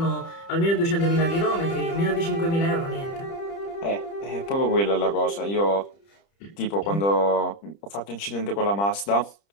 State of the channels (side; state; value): right; late; 30 ms